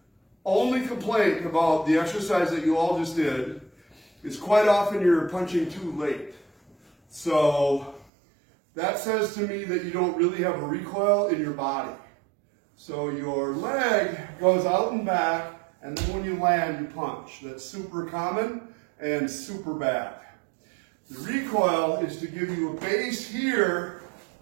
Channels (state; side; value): drops out; left; at 8.1 s